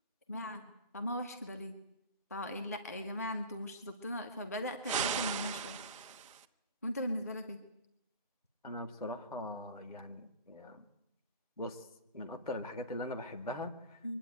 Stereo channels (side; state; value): both; inverted; correlation -0.33